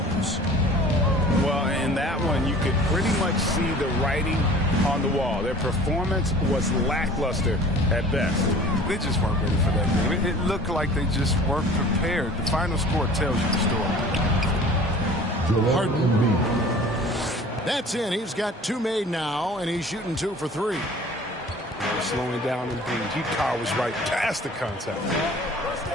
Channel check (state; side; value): normal; both; correlation 0.46